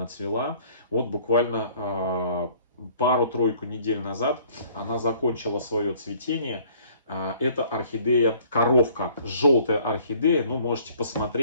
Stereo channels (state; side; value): inverted; both; correlation -0.57